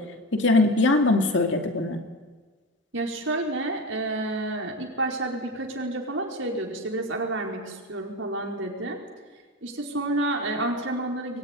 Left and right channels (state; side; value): normal; both; correlation 0.25